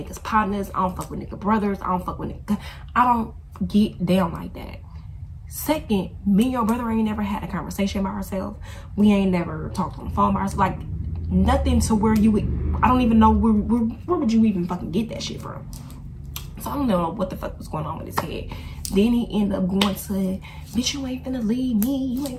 partners. I don't fuck with niggas' brothers. I don't fuck with niggas. I don't get down like that. Second, me and your brother ain't never had a conversation by ourselves. We ain't never talked on the phone by ourselves. Like, nothing to where you would, I don't even know where would you even fucking get that shit from. So I don't know what the fuck was going on with his head. Then he ended up going to, bitch, you ain't finna leave me. You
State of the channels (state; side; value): identical; both; correlation 1.00